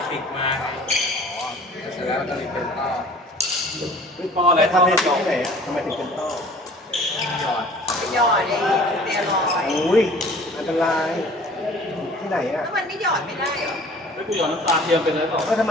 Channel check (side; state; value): both; normal; correlation 0.48